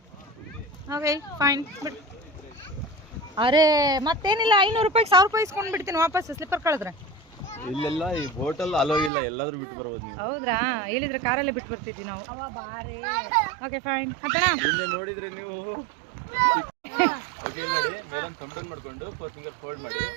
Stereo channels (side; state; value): left; drops out; at 9.1 s